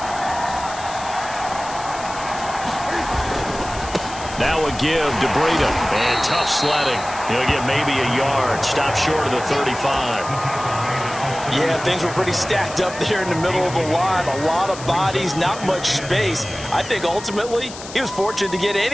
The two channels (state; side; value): noise; left; hiss, 14 dB below the sound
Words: Now a give to Breida. And tough sledding. He'll get maybe a yard. Stop short of the 35. Yeah, things were pretty stacked up there in the middle of the line. A lot of bodies, not much space. I think ultimately he was fortunate to get